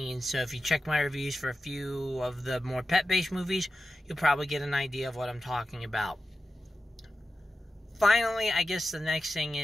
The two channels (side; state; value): both; normal; correlation 0.92